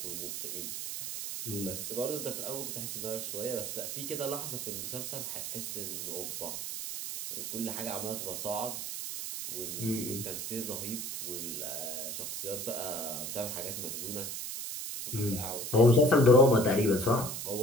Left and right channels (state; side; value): noise; right; hiss, 5 dB below the sound